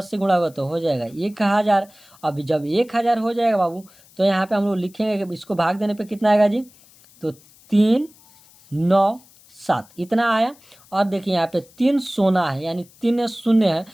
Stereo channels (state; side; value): noise; left; hiss, 27 dB below the sound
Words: से गुणा होगा तो हो जाएगा 1000। अब जब 1000 हो जाएगा बाबू तो यहाँ पे हम लोग लिखेंगे कि इसको भाग देने पे कितना आएगा जी, तो 397 इतना आया। और देखिए यहाँ पे 3 सोना है, यानी 3 शून्य है,